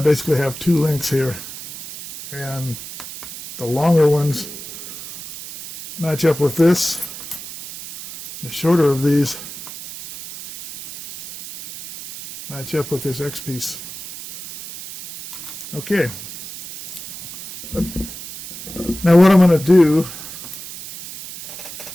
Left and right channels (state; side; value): noise; right; hiss, 12 dB below the sound